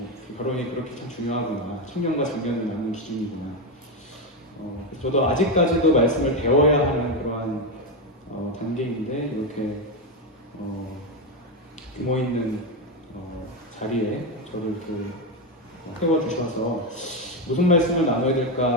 결혼이 그렇게 참 중요하구나. 청년과 장년을 낳는 기준이구나. 그래서 저도 아직까지도 말씀을 배워야 하는 그러한 단계인데 이렇게 규모 있는 자리에 저를 이렇게 태워주셔서 무슨 말씀을 나눠야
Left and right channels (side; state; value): both; normal; correlation 0.09